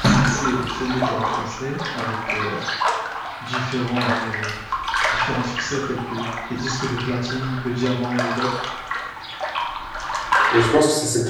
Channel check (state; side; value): identical; both; correlation 1.00